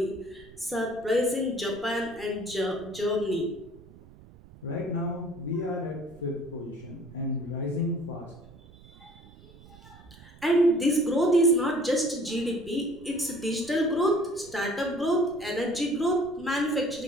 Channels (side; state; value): right; noise; rumble, 22 dB below the sound